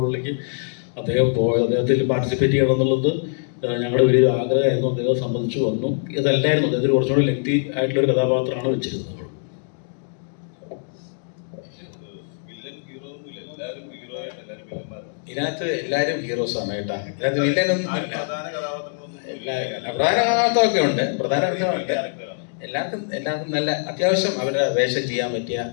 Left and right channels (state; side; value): silent; right; digital silence